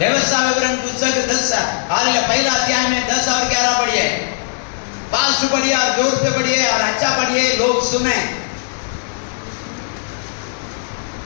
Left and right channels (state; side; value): silent; right; digital silence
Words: विवरण पुस्तक 10 पहला अध्याय में 10 और 11 पढ़िए। फास्ट पढ़िए और जोर से पढ़िए और अच्छा पढ़िए, लोग सुने।